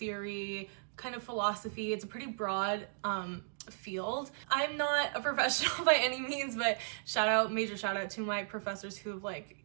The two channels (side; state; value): left; silent; digital silence